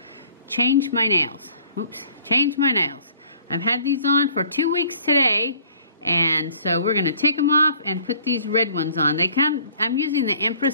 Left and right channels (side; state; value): both; inverted; correlation -0.55